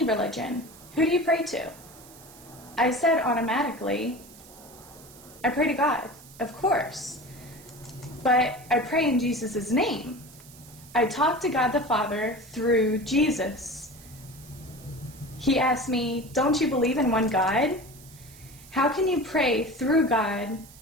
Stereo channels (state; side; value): noise; right; hiss, 21 dB below the sound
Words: religion, who do you pray to? I said automatically, I pray to God, of course. But I pray in Jesus' name. I talk to God the Father through Jesus. He asked me, don't you believe in one God? How can you pray through God,